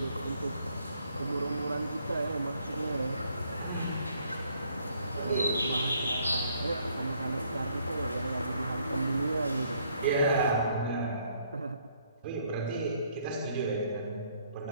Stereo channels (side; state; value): both; inverted; correlation -0.68